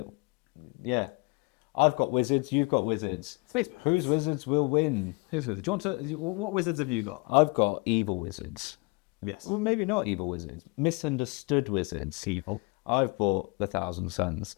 Yeah. I've got wizards, you've got wizards. Space wizards. Whose wizards will win? Whose wizards? Do you want to... What wizards have you got? I've got evil wizards. Yes. Well, maybe not evil wizards. Misunderstood wizards. Evil. I've bought the 1,000 Suns.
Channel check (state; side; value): quieter; right; 29.2 dB